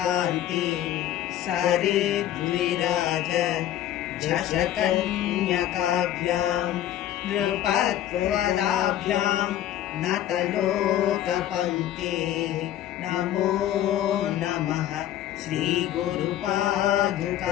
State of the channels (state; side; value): quieter; right; 12.2 dB